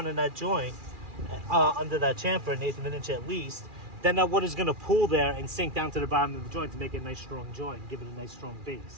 in that joint, under that chamfer, an eighth of an inch at least. Then that water's gonna pool there and sink down to the bottom of the joint to make it a nice strong joint, give it a nice strong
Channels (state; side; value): late; left; 2.4 ms